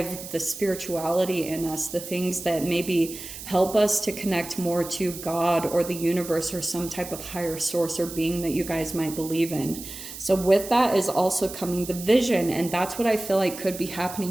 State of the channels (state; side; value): noise; right; hiss, 11 dB below the sound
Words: the spirituality in us, the things that maybe help us to connect more to God or the universe or some type of higher source or being that you guys might believe in. So with that is also coming the vision. And that's what I feel like could be